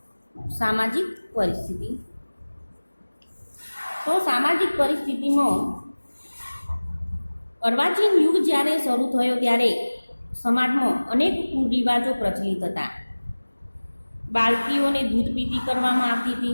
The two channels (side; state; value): both; inverted; correlation -1.00